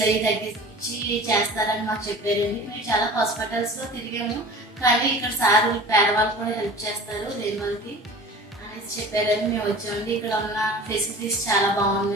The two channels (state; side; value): normal; both; correlation 0.40